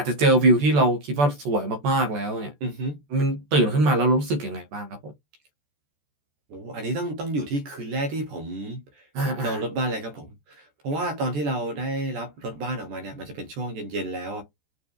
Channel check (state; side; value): late; left; 14 ms